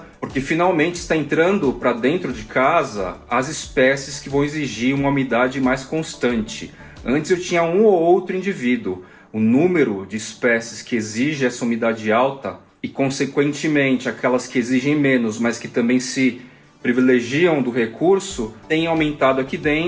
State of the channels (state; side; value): identical; both; correlation 1.00